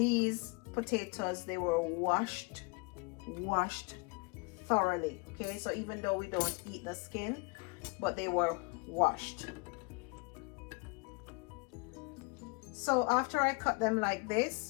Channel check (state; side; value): quieter; right; 30.1 dB